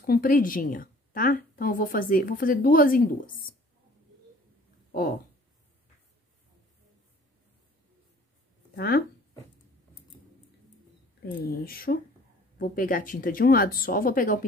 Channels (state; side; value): normal; both; correlation 0.52